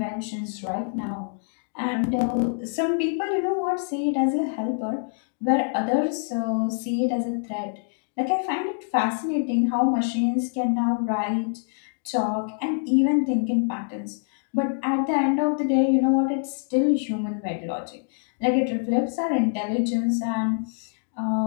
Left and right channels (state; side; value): silent; right; digital silence